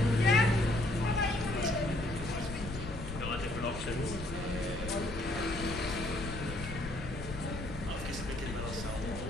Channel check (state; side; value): noise; left; rumble, 8 dB below the sound